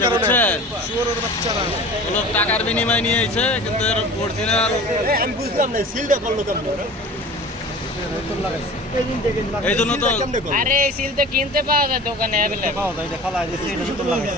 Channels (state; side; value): normal; both; correlation 0.39